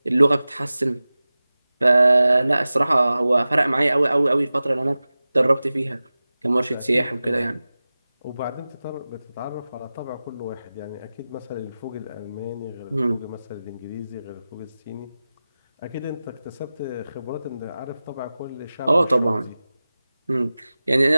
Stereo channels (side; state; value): both; inverted; correlation -0.96